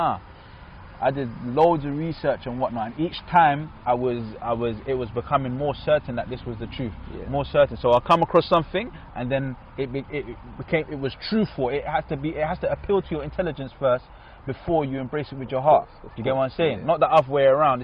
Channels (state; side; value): identical; both; correlation 1.00